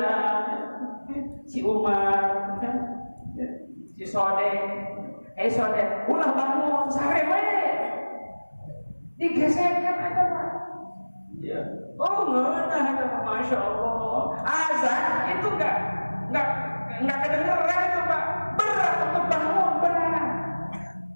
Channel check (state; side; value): inverted; both; correlation -1.00